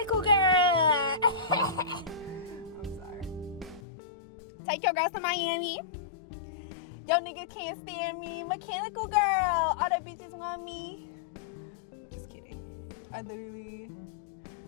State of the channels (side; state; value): right; drops out; at 3.8 s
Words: girl. I'm sorry. Take your girls to Miami. Yo nigga can't stand me. Mechanical girl. All the bitches want me. Just kidding. I literally